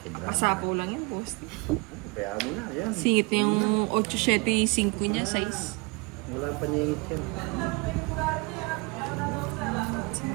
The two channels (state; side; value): quieter; left; 28.3 dB